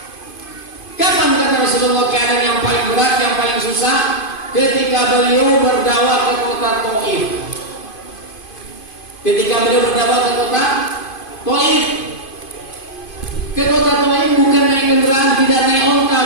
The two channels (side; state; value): right; late; 2.5 ms